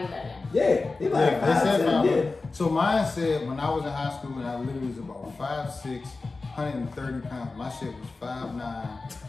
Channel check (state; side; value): quieter; right; 3.7 dB